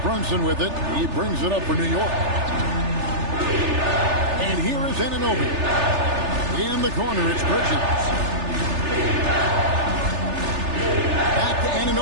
with it. He brings it up for New York. And here is Anunoby. In the corner, it's Bridges. Back to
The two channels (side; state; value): left; late; 3.3 ms